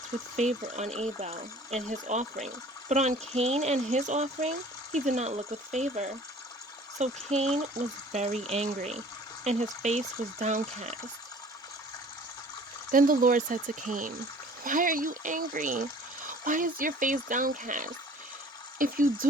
with favor on Abel and his offering, but on Cain and his offering he did not look with favor. So Cain was very angry, and his face was downcast. Then the Lord said to Cain, "Why are you angry? Why is your face downcast? If you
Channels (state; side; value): normal; both; correlation 0.49